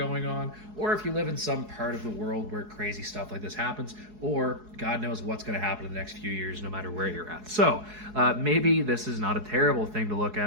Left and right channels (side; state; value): left; late; 4.7 ms